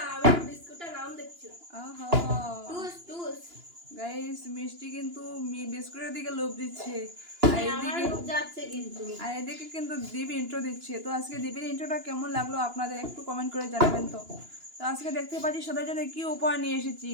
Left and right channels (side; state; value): left; late; 2.9 ms